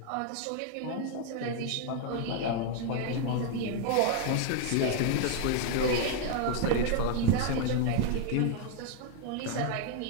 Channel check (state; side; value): different; both; correlation 0.00